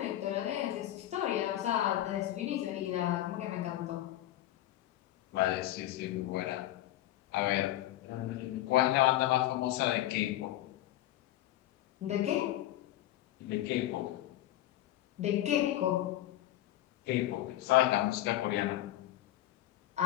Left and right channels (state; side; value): quieter; right; 14.3 dB